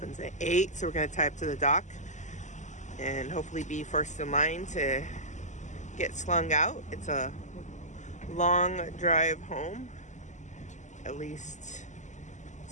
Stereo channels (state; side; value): late; right; 0.34 ms